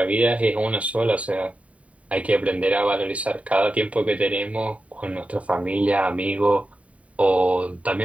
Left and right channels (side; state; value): left; late; 0.066 ms